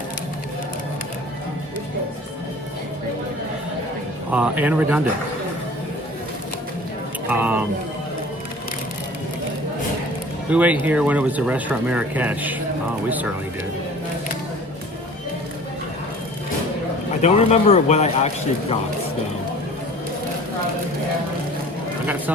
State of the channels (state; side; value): normal; both; correlation 0.45